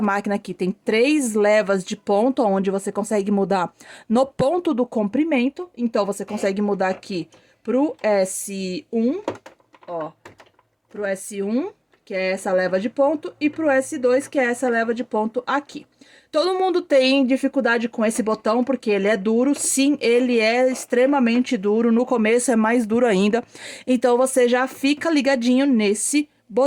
máquina aqui, tem 3 levas de ponto, onde você consegue mudar no ponto do comprimento. Então, você consegue mudar aqui pro S1, ó, pro S1, que é essa leva de ponto, e pro S2, que é essa leva de ponto aqui. Todo mundo tem dificuldade com esse botão, porque ele é duro. Sim, ele é extremamente duro. No começo é mais duro ainda. Então, você já fica ligadinho nesse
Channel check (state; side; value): identical; both; correlation 1.00